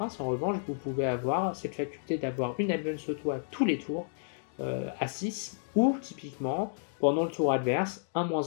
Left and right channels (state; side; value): silent; right; digital silence